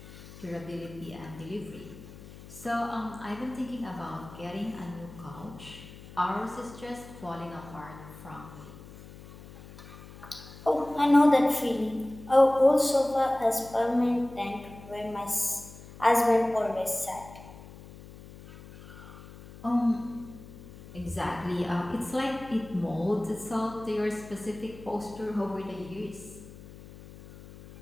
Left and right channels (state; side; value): noise; left; hum, 17 dB below the sound